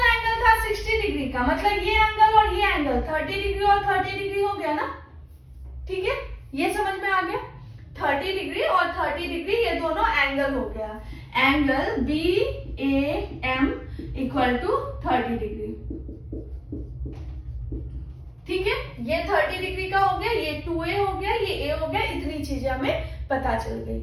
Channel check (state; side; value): identical; both; correlation 1.00